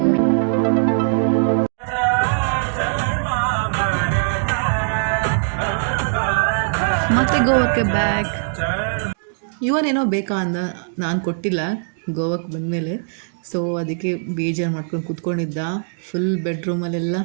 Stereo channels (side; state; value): left; silent; digital silence